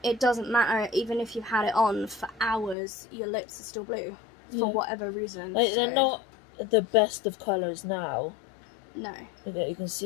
it doesn't matter, even if you've had it on for hours, your lips are still blue, for whatever reason. Like, they're not the best of colours now. No. You can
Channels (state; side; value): drops out; right; at 2.8 s